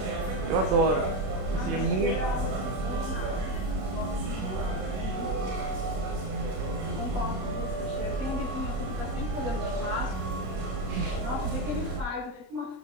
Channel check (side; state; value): left; late; 27 ms